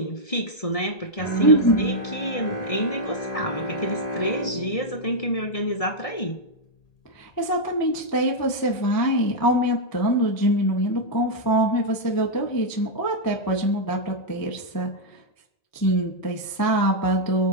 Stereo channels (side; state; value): right; late; 1.7 ms